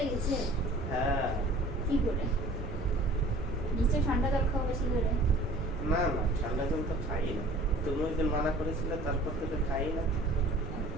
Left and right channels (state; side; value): noise; right; rumble, 9 dB below the sound